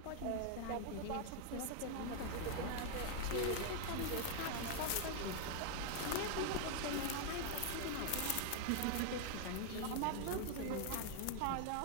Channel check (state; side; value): different; both; correlation 0.00